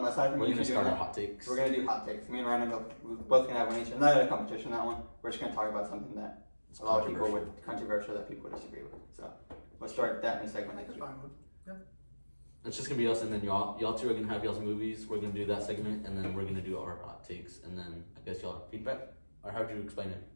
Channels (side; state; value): both; inverted; correlation -1.00